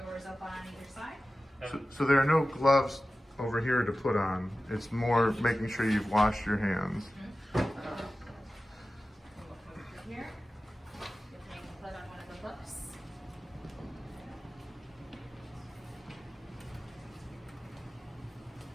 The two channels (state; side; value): normal; both; correlation 0.95